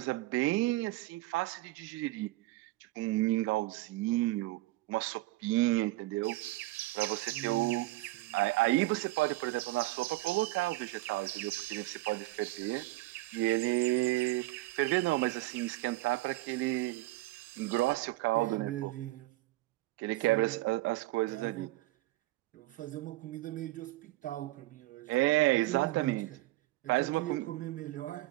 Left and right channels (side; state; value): left; quieter; 19.1 dB